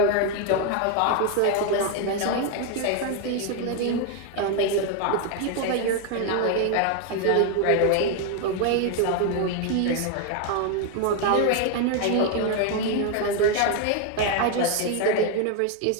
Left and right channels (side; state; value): both; different; correlation 0.01